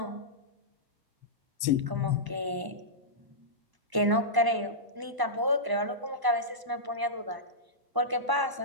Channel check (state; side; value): late; left; 1.0 ms